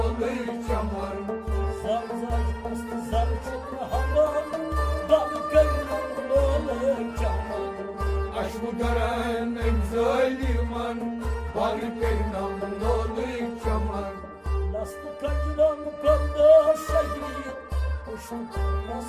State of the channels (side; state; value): both; identical; correlation 1.00